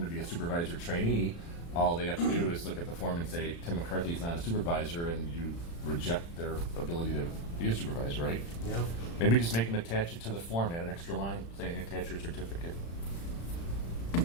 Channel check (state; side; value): late; right; 35 ms